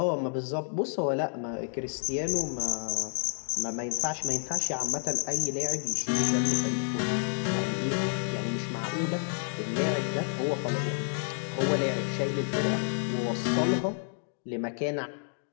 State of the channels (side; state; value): right; silent; digital silence